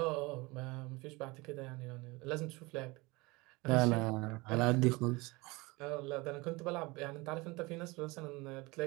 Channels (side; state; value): left; quieter; 23.9 dB